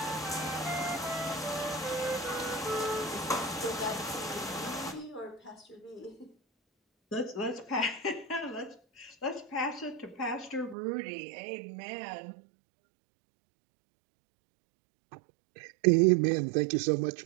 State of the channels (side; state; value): left; drops out; at 10.8 s